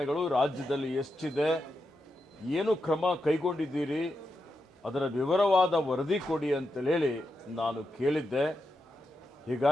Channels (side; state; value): both; normal; correlation 0.87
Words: ರಾಜ್ಯದಲ್ಲಿ ಎಷ್ಟಿದೆ, ಏನು ಕ್ರಮ ಕೈಗೊಂಡಿದ್ದೀರಿ, ಅದರ ವಿವರವಾದ ವರದಿ ಕೊಡಿ ಅಂತೇಳಿ ನಾನು ಕೇಳಿದ್ದೆ.